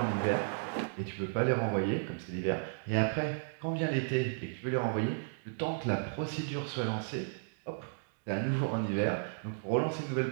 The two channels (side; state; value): left; silent; digital silence